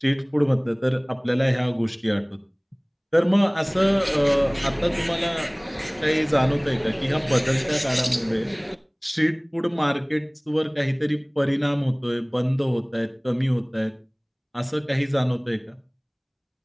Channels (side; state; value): both; identical; correlation 1.00